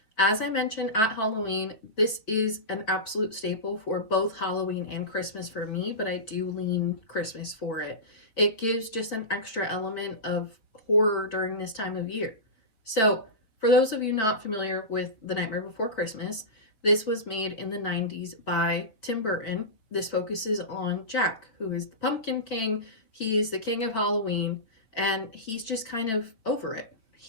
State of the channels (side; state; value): right; late; 4.6 ms